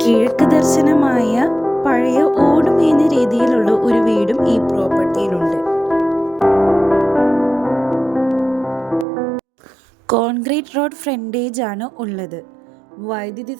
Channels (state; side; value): drops out; left; at 9.1 s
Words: കിഴക്ക് ദർശനമായ പഴയ ഓടുമേഞ്ഞ രീതിയിലുള്ള ഒരു വീടും ഈ പ്രോപ്പർട്ടിയിലുണ്ട്. കോൺക്രീറ്റ് റോഡ് ഫ്രണ്ടേജ് ആണ് ഉള്ളത്. വൈദ്യുതി